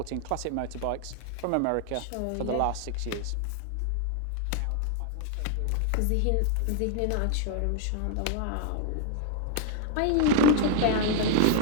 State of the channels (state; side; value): different; both; correlation 0.00